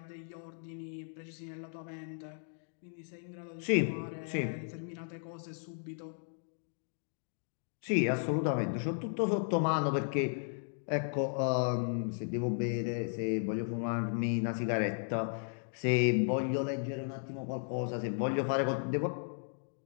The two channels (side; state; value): right; silent; digital silence